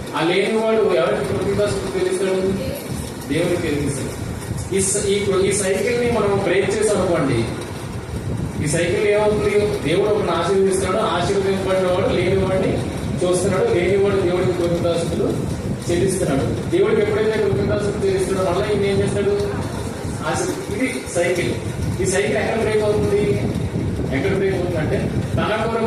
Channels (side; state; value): both; identical; correlation 1.00